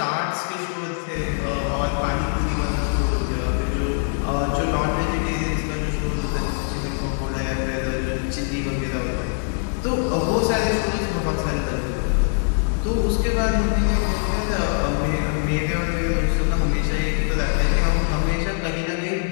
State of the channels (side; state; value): right; silent; 56 dB below the other